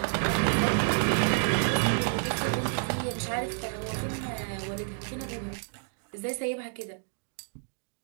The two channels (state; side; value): silent; left; digital silence